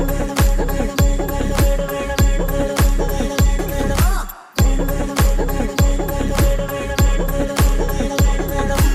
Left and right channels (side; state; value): both; identical; correlation 1.00